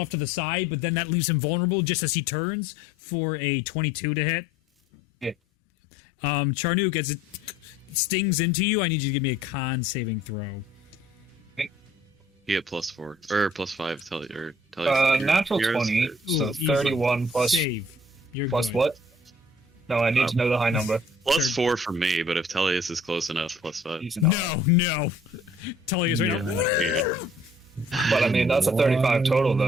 to the side, but then that leaves him vulnerable just as he turns for a 22 to hit. Yeah. Charnook, as it stings into you, I need you to give me a con saving throw. He hit +4 or +5. Tell you. Natural 20, so Easy. 31 plus Save. You're plus good. what? No, I need to know the high number. +4 for me, but if Tellius is close enough, +5. Easy enough. No. Tell you right now. But I mean, that's a 35 total,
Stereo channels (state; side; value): normal; both; correlation 0.55